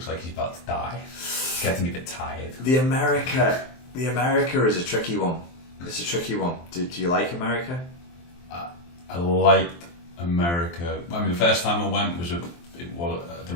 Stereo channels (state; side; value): late; right; 23 ms